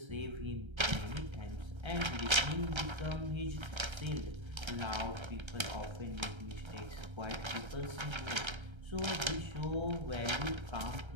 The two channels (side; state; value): left; late; 1.3 ms